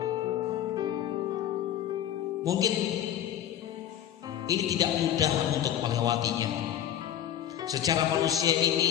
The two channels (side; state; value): right; quieter; 10.9 dB